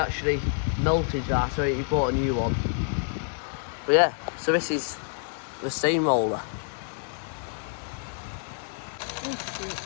melted that, so he bought a new one. But yeah, so this is the steamroller.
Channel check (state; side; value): silent; right; digital silence